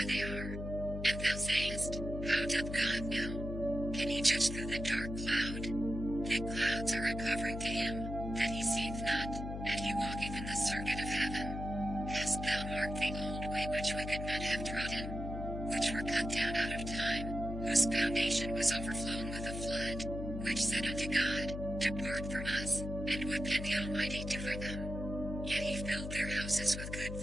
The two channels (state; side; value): noise; left; hum, 6 dB below the sound